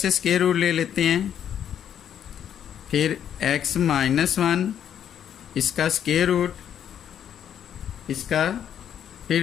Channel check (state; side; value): quieter; right; 9.4 dB